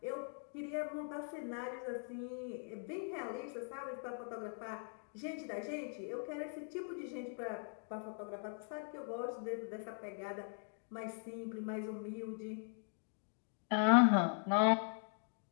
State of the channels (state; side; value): silent; right; 50 dB below the other